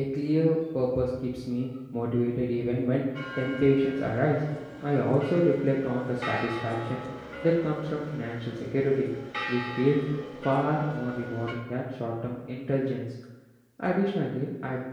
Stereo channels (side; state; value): both; identical; correlation 1.00